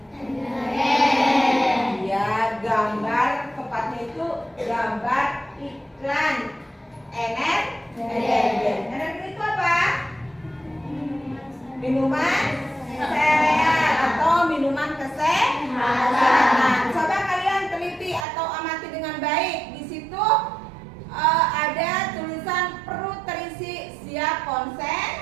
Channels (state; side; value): drops out; left; at 18.2 s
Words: Ya, gambar tepatnya itu gambar iklan energen. Energen itu apa? Minuman sereal atau minuman kesehatan. Coba kalian teliti atau amati dengan baik. Di situ ada tulisan perlu terisi siap